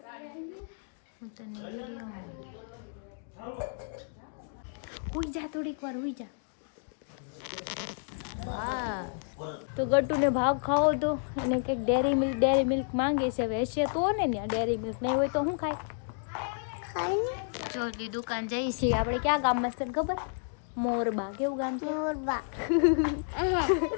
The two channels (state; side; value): silent; right; digital silence